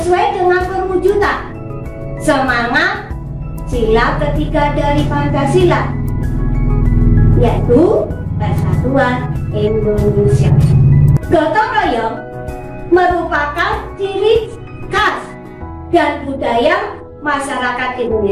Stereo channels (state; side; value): identical; both; correlation 1.00